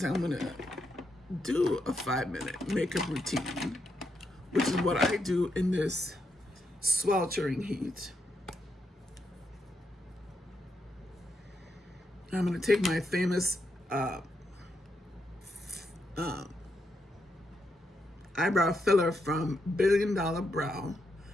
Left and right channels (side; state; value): both; normal; correlation 0.82